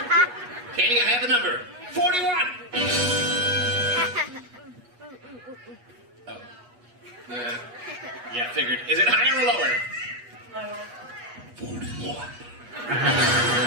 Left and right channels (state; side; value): late; left; 8.3 ms